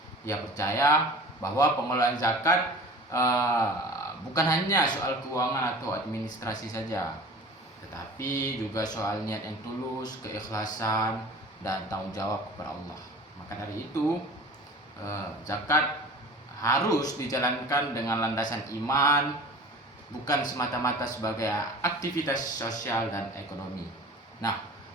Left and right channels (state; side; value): normal; both; correlation 0.41